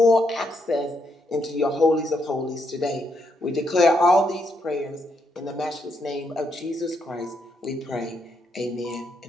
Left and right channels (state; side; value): normal; both; correlation 0.78